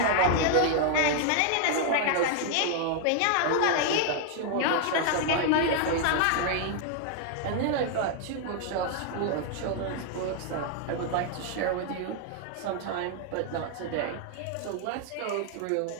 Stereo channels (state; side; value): different; both; correlation 0.00